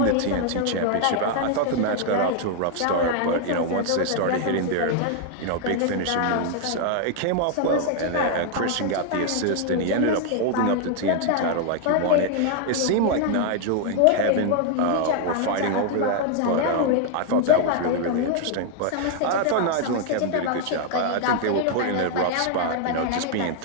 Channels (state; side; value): different; both; correlation 0.00